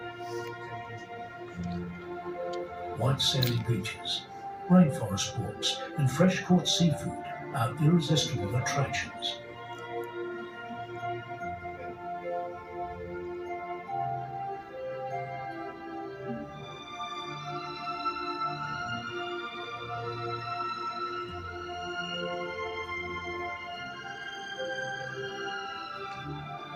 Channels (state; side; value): identical; both; correlation 1.00